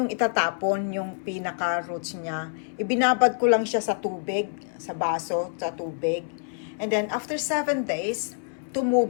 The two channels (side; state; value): right; silent; 61 dB below the other